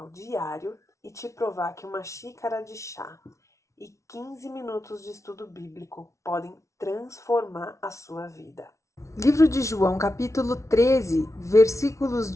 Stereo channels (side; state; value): right; late; 0.14 ms